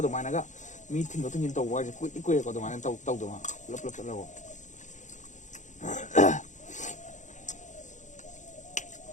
dumai naga mi thin do thin tawwa je kui kui ko dumai taw taw duma lap lap chalago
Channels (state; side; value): late; right; 0.35 ms